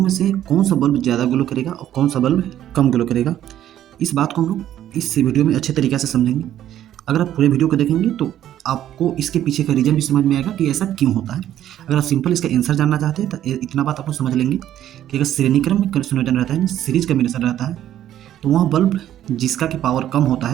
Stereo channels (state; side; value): quieter; left; 11.7 dB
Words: में से कौन सा बल्ब ज़्यादा ग्लो करेगा और कौन सा बल्ब कम ग्लो करेगा। इस बात को हम लोग इस वीडियो में अच्छे तरीके से समझेंगे। अगर आप पूरे वीडियो को देखेंगे तो आपको इसके पीछे का रीज़न भी समझ में आएगा कि ऐसा क्यों होता है। अगर आप सिंपल इसका आंसर जानना चाहते हैं तो इतना बात आप लोग समझ लेंगे कि अगर श्रेणी क्रम में संयोजन रहता है, सीरीज कम्बिनेशन रहता है, तो वह बल्ब जिसका कि पावर कम होता